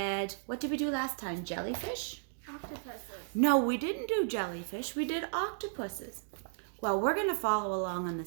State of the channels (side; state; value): left; silent; digital silence